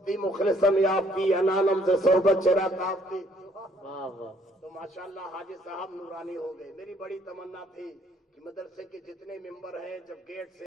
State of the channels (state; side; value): normal; both; correlation 0.64